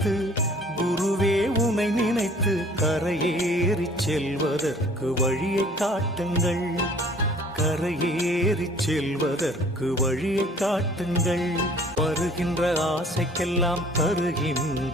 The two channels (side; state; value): both; normal; correlation 0.52